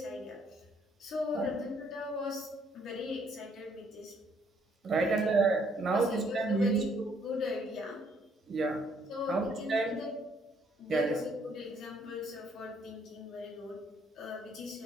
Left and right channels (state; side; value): normal; both; correlation 0.67